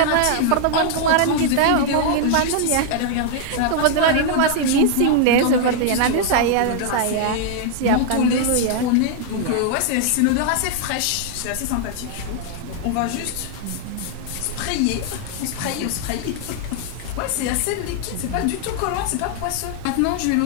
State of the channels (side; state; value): both; different; correlation 0.00